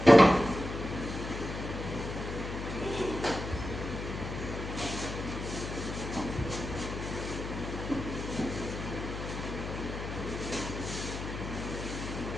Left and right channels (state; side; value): noise; left; hum, 6 dB below the sound